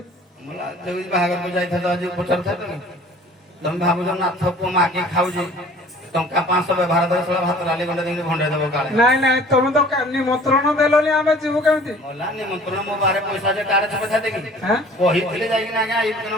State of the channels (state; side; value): normal; both; correlation 0.49